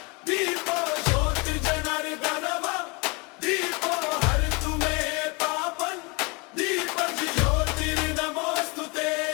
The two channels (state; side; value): quieter; right; 29.3 dB